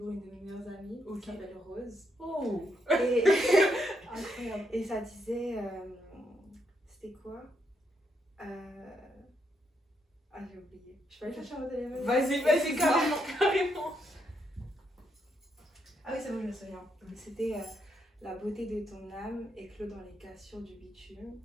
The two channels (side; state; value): both; normal; correlation 0.78